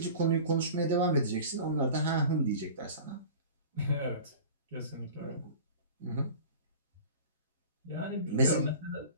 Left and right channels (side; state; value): both; inverted; correlation -0.39